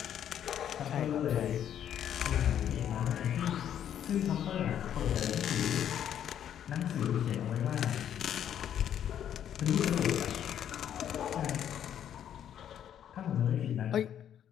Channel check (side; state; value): right; quieter; 9.9 dB